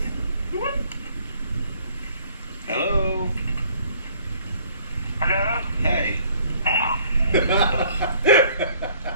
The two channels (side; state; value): both; inverted; correlation -0.58